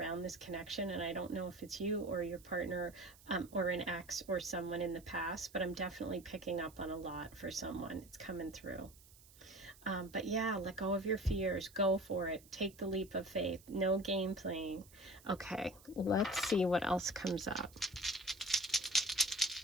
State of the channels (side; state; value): right; noise; hiss, 23 dB below the sound